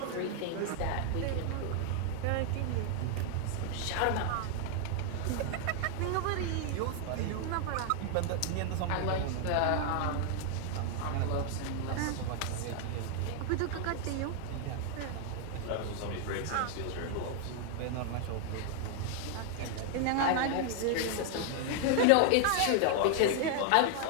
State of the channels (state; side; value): different; both; correlation 0.00